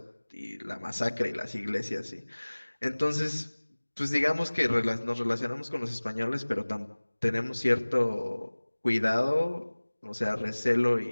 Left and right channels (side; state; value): both; inverted; correlation -1.00